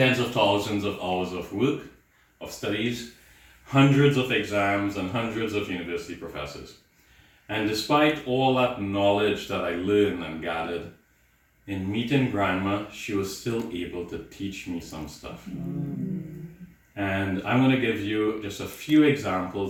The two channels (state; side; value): identical; both; correlation 1.00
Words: of thousands of hours of work, of studies, hundreds of exams, and hundreds of university professors. And despite all that knowledge that I learned and gathered, in meeting grandma, she was still able to teach me some stuff. And I'm going to give you just a few